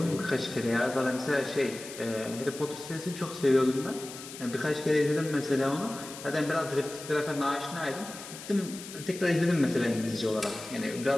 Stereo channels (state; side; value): noise; left; hiss, 13 dB below the sound